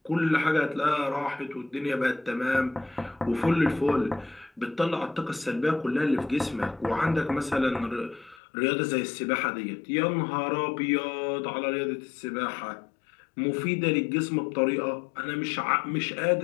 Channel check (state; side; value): drops out; right; at 8.4 s